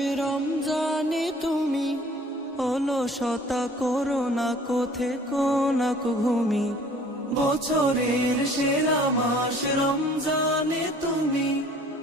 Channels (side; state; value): both; normal; correlation 0.52